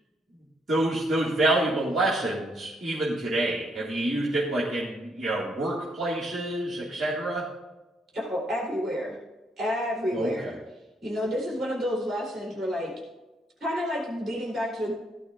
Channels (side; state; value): both; normal; correlation 0.73